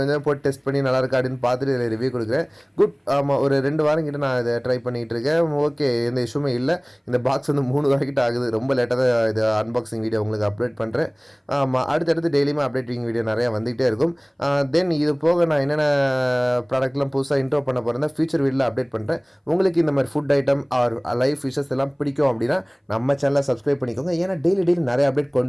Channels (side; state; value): both; identical; correlation 1.00